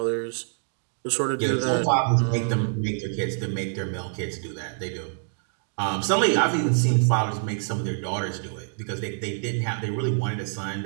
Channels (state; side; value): silent; left; digital silence